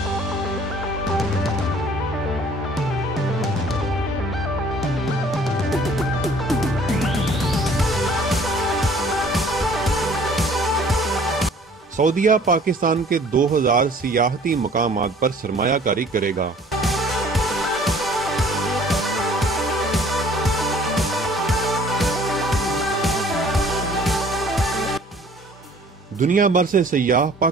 सऊदीया पाकिस्तान के 2000 सियाहती मकामात पर सरमायाकारी करेगा। दुनिया भर से सयाह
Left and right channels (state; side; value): normal; both; correlation 0.54